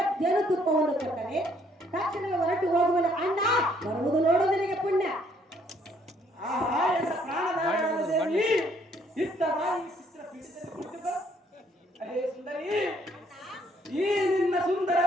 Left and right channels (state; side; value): normal; both; correlation 0.66